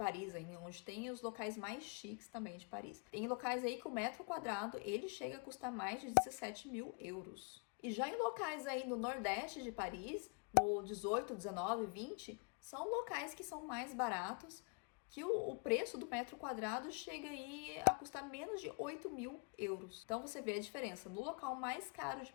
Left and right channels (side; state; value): right; quieter; 34.4 dB